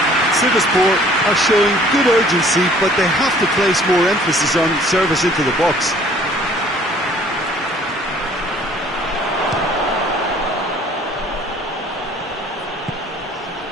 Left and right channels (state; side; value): normal; both; correlation 0.55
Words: Sivaspor are showing good urgency, but they have to place more emphasis on service into the box.